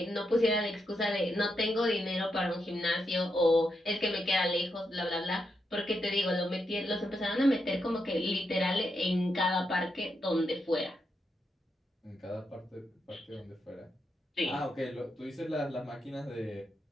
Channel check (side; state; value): both; normal; correlation 0.83